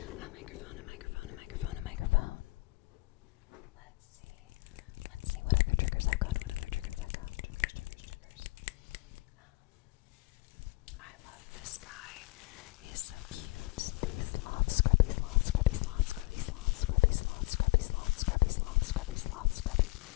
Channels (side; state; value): right; quieter; 22.8 dB